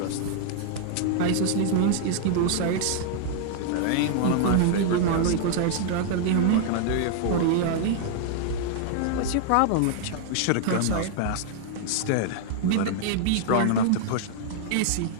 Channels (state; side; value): different; both; correlation -0.01